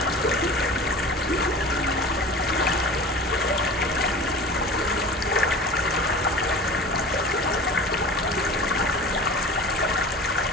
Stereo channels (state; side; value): normal; both; correlation 0.37